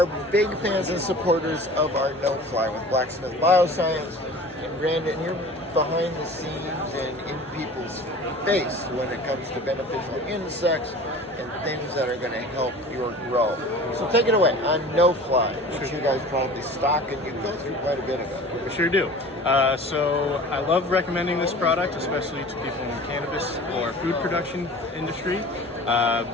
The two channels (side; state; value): both; normal; correlation 0.41